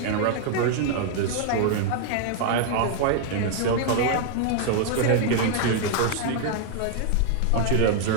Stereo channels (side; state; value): both; different; correlation 0.00